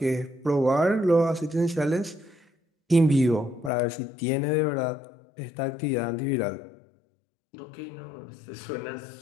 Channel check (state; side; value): drops out; right; at 3.7 s